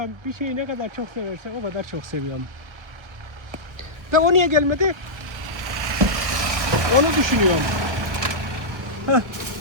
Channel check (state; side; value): late; left; 1.3 ms